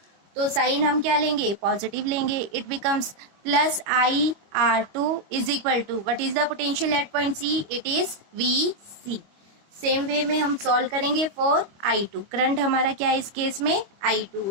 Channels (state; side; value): late; left; 25 ms